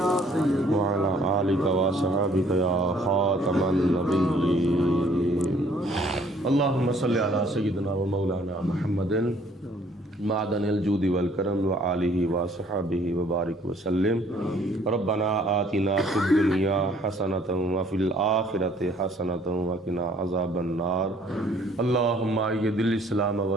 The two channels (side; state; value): both; normal; correlation 0.60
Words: وعلی آلک و صحابک یا خاتم النبیین. اللہم صلی علی سیدنا و مولانا محمد معدن الجود والکرم وآلہ وصحبہ وبارک وسلم. ربنا آتنا فی الدنیا حسنۃ وفی الآخرۃ حسنۃ وقنا عذاب النار. اللہم اید الاسلام